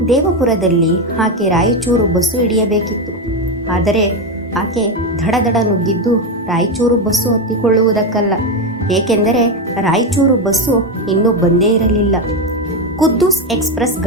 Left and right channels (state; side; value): normal; both; correlation 0.11